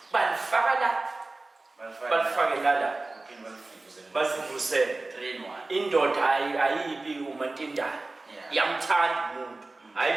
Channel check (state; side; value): quieter; left; 3.2 dB